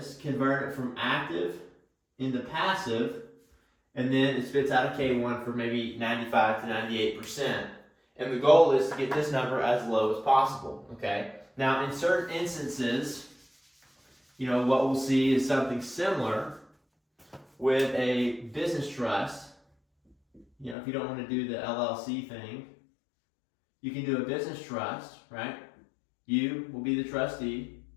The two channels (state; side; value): drops out; right; at 20.8 s